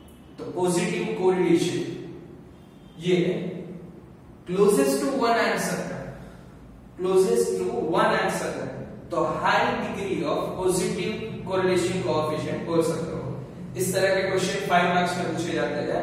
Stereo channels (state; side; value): identical; both; correlation 1.00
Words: तो पॉजिटिव कोरिलेशन ये क्लोजेस्ट टू वन आंसर है, क्लोजेस्ट टू वन आंसर है, तो high degree of positive correlation coefficient बोल सकते हो। इस तरह के क्वेश्चन 5 मार्क्स में पूछे जाते